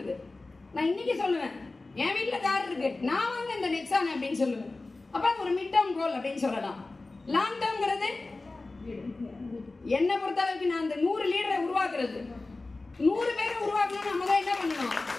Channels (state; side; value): quieter; right; 3.3 dB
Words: நான் இன்னைக்கு சொல்லுவேன் என் வீட்டுல கார் இருக்கு, நான் வாங்க இந்த நெக்ஸான் அப்படின்னு சொல்லுவேன். அப்ப அது ஒரு மிட் டேர்ம் கோல் அப்படின்னு சொல்லலாம். லாங் டேர்ம்ங்கிறது என்ன பொறுத்த அளவுக்கு நான் அந்த 100 லீடரை உருவாக்குறது. 100 பேரை உருவாக்கணும். நம்ம தான் என்ன பண்ணணும்?